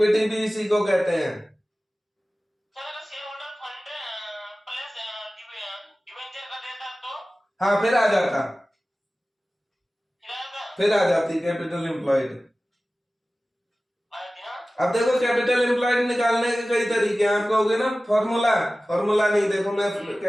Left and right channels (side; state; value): both; normal; correlation 0.97